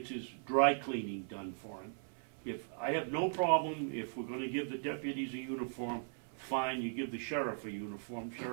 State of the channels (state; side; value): silent; left; 52 dB below the other